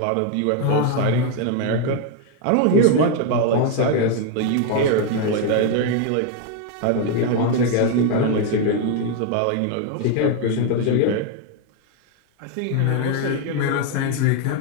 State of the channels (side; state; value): both; different; correlation 0.01